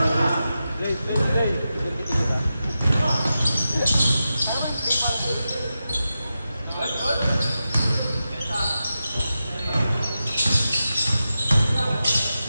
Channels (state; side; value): inverted; both; correlation -0.91